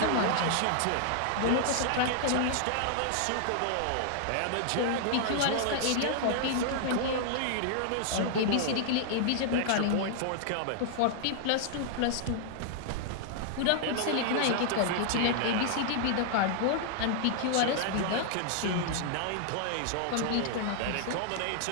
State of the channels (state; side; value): different; both; correlation -0.01